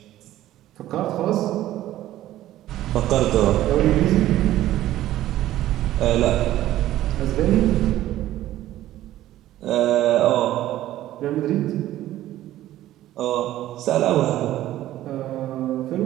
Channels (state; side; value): quieter; left; 14.0 dB